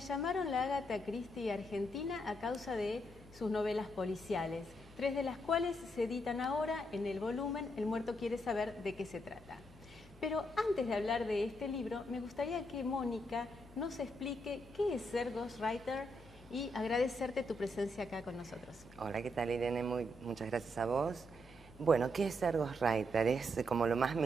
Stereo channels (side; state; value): both; normal; correlation 0.78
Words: la Agatha Christie argentina a causa de sus novelas policiales, 3 de las cuales se editan ahora en el volumen El muerto quiere saber de qué se trata. Pero antes de hablar de este libro, me gustaría que Mónica nos explique qué es ser ghostwriter y agradecerte tu presencia acá con nosotros. Hola, ¿qué tal, Irene? Muchas gracias a vos. Bueno, ¿qué es ser ghostwriter? Es como lo más